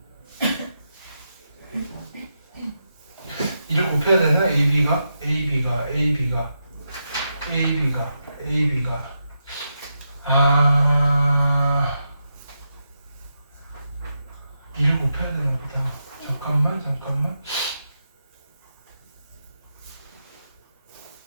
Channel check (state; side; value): inverted; both; correlation -0.85